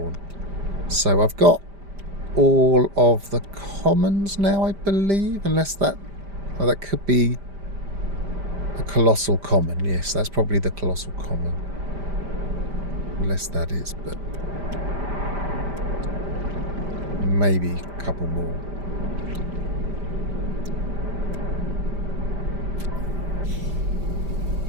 So I've got all of the commons now, I believe, unless that... Oh, that could be a colossal common. Yes, that's probably the colossal common. Unless that is, but... maybe a couple more.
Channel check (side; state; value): left; late; 5.0 ms